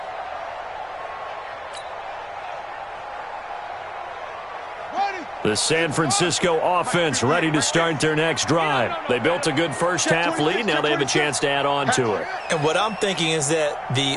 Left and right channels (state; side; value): identical; both; correlation 1.00